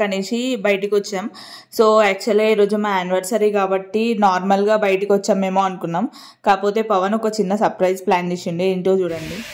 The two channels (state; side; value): identical; both; correlation 1.00